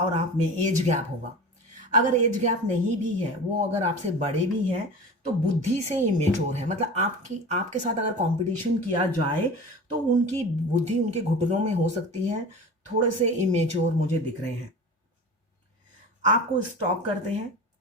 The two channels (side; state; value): both; normal; correlation 0.34